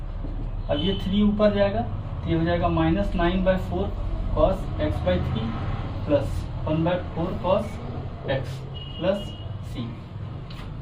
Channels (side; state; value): both; identical; correlation 1.00